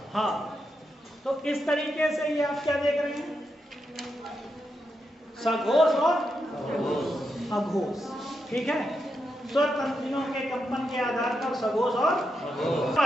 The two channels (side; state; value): both; normal; correlation 0.85